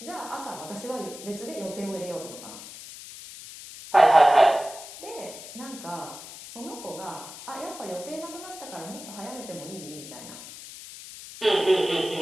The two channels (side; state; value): left; noise; hiss, 14 dB below the sound